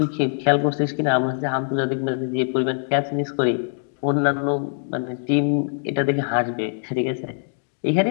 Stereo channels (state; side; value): silent; right; digital silence